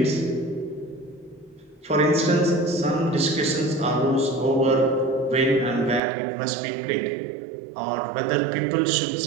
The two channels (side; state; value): left; drops out; at 6.0 s